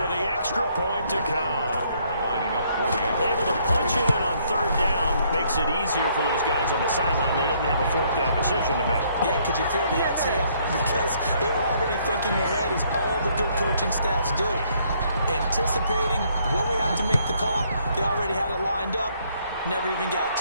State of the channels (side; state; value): both; inverted; correlation -0.67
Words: the extra point to come. Lining up for the Able to punch it in on 3rd down makes it easier for those guys on the sideline. They didn't have a 4th down decision to make. Yeah, could you feel the exhale? Because they were already thinking ahead, as all the good coaching staffs do. Anticipating, will we have to make the call? They already had it lined up, never even got